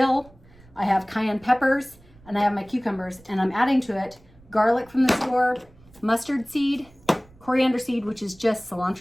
I have cayenne peppers, and I have my cucumbers, and I'm adding to it garlic from the store, mustard seed, coriander seed, which is just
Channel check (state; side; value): noise; right; rumble, 26 dB below the sound